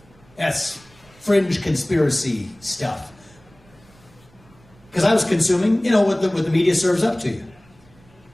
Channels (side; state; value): right; noise; rumble, 28 dB below the sound